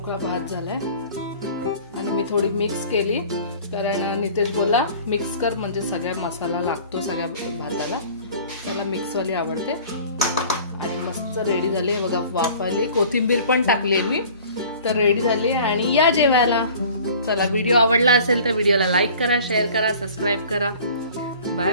भात झालाय आणि मी थोडी मिक्स केली कारण नितेश बोला मिक्स कर म्हणजे सगळ्या मसाला लागतो सगळ्या भाताला. त्याला मिक्सवाली आवडते. आणि मस्त रेडी झाली आहे बघा. वाफ आली, कोथिंबीर पण टाकली मी. तर रेडी झाली आणि या जेवायला. चला व्हिडिओ आवडला असेल तर व्हिडिओला लाईक करा, शेअर करा, सबस्क्राईब करा. Bye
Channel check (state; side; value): inverted; both; correlation -0.46